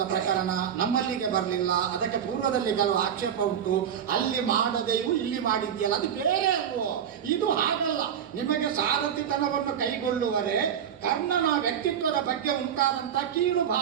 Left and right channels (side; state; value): left; quieter; 8.7 dB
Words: ಪ್ರಕರಣ ನಮ್ಮಲ್ಲಿಗೆ ಬರಲಿಲ್ಲ, ಅದಕ್ಕೆ ಪೂರ್ವದಲ್ಲಿ ಕೆಲವು ಆಕ್ಷೇಪ ಉಂಟು. ಅಲ್ಲಿ ಮಾಡದೆಯೂ ಇಲ್ಲಿ ಮಾಡಿದ್ಯಲ್ಲ, ಅದು ಬೇರೆ ಅಲ್ವೋ? ಇದು ಹಾಗಲ್ಲ. ನಿಮಗೆ ಸಾರಥಿತನವನ್ನು ಕೈಗೊಳ್ಳುವರೆ ಕರ್ಣನ ವ್ಯಕ್ತಿತ್ವದ ಬಗ್ಗೆ ಉಂಟಾದಂತ ಕೀಳು